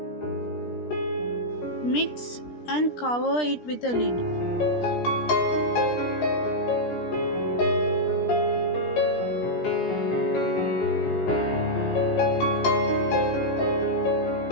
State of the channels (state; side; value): late; right; 17 ms